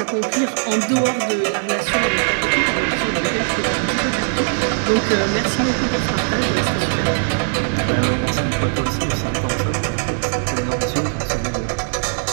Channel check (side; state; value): left; silent; digital silence